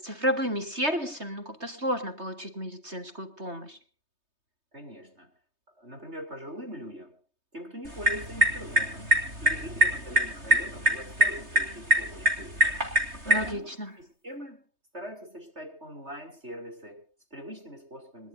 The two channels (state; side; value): late; left; 3.2 ms